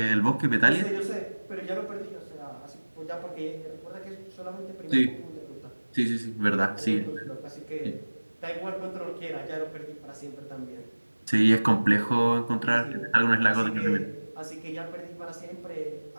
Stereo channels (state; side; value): inverted; both; correlation -1.00